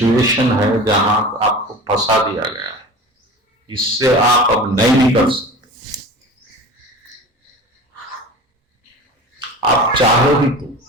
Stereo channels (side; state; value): both; normal; correlation 0.36